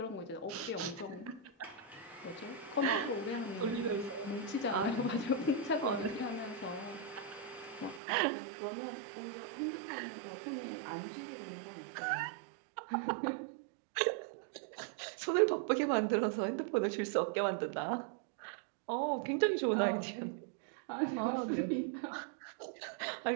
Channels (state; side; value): drops out; left; at 8.0 s